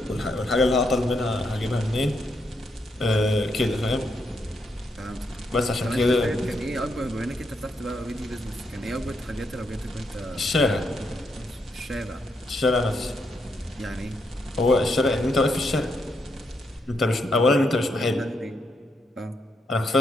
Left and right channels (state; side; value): normal; both; correlation 0.79